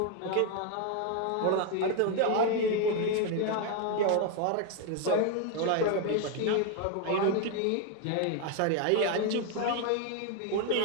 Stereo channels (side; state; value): both; different; correlation 0.01